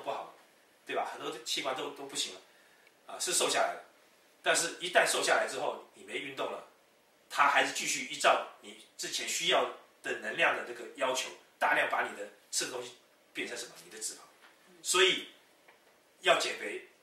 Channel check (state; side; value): identical; both; correlation 1.00